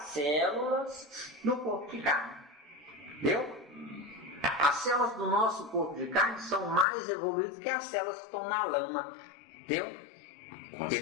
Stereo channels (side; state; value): right; drops out; at 6.9 s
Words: células do corpo de carne. Entendeu? As células do nosso corpo de carne são mais evoluídas que as células que estão na lama. Entendeu? Porque